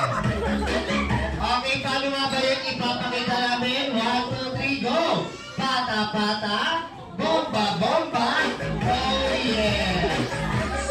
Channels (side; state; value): both; identical; correlation 1.00